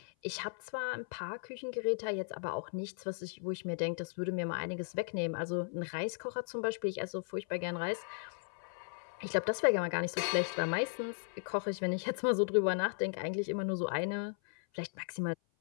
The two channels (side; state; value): right; silent; 54 dB below the other